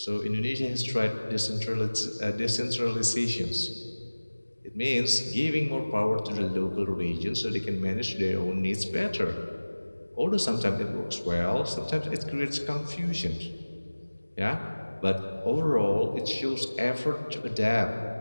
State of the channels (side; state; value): both; inverted; correlation -1.00